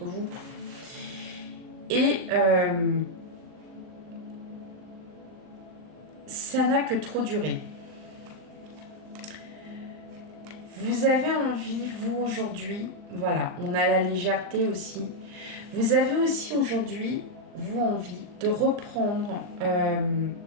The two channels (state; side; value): late; left; 39 ms